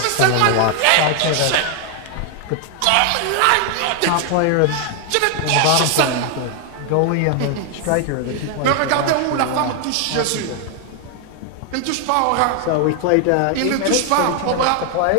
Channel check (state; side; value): different; both; correlation 0.00